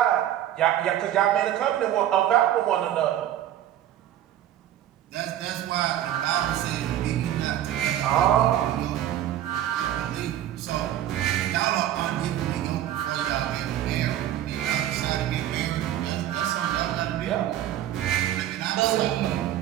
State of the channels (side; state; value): left; quieter; 12.0 dB